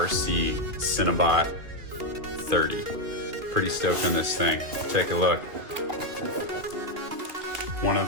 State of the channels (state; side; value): late; left; 3.1 ms